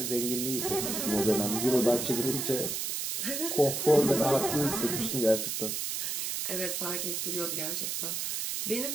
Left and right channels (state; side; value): noise; right; hiss, 2 dB below the sound